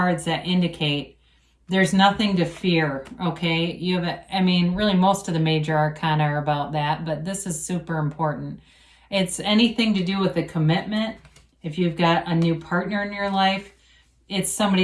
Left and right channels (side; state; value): both; identical; correlation 1.00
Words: that indicate there's nothing to fear, okay? Really most of the major arcana are about that, but this is super important. It's anything to do with a commitment. If you've got a new partner in your life, it's